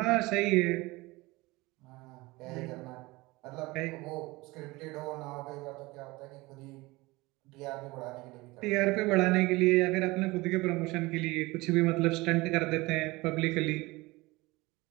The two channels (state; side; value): quieter; left; 21.9 dB